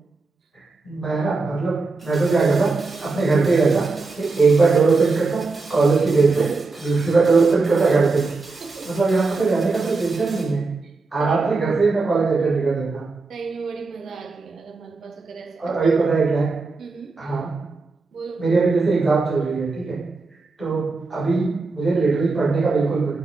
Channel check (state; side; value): quieter; left; 3.8 dB